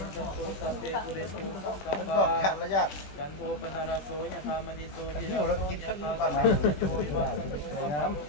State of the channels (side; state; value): right; late; 21 ms